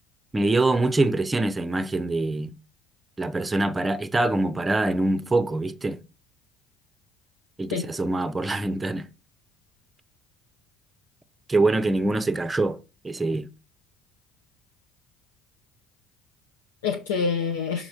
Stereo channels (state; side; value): normal; both; correlation 0.83